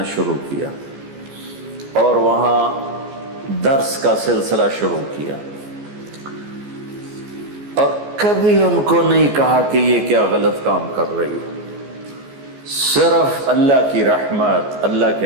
شروع کیا اور وہاں درس کا سلسلہ شروع کیا، اور کبھی ان کو نہیں کہا کہ یہ کیا غلط کام کر رہی ہے، صرف اللہ کی رحمت، اللہ کے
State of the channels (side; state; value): left; late; 14 ms